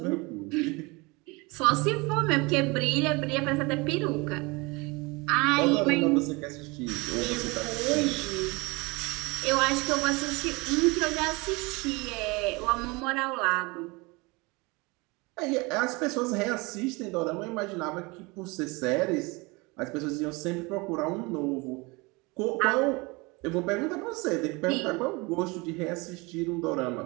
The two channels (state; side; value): quieter; left; 25.9 dB